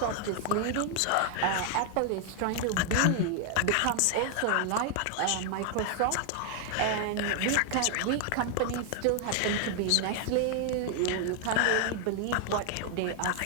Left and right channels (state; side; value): different; both; correlation 0.00